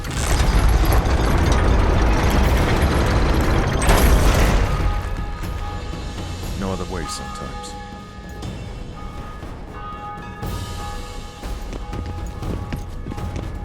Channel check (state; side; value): identical; both; correlation 1.00